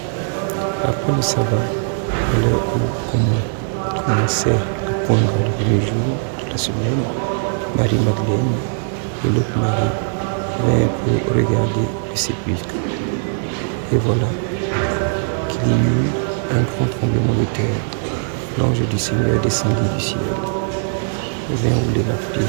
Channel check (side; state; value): left; silent; digital silence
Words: Après le sabbat, à l'heure où commençait à poindre le premier jour de la semaine, Marie-Madeleine et l'autre Marie vinrent pour regarder le sépulcre. Et voilà qu'il y eut un grand tremblement de terre. L'ange du Seigneur descendit du ciel, vint rouler la